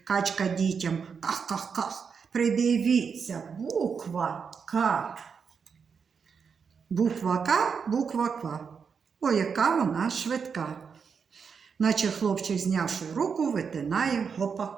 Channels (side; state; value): left; quieter; 6.1 dB